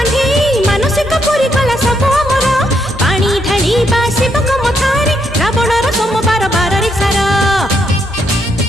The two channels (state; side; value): normal; both; correlation 0.76